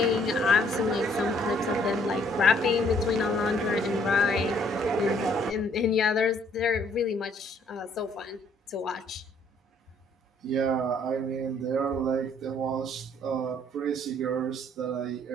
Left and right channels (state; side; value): normal; both; correlation 0.64